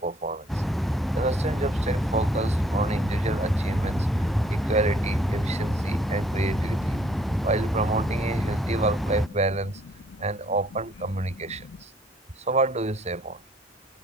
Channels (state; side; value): normal; both; correlation 0.62